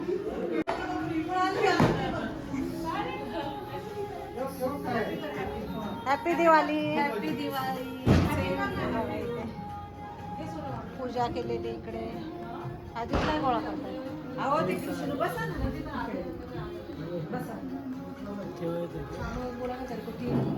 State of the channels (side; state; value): both; identical; correlation 1.00